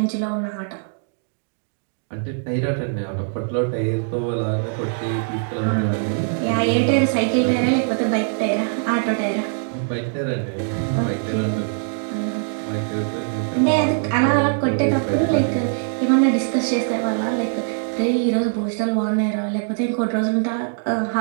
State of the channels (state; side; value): silent; left; digital silence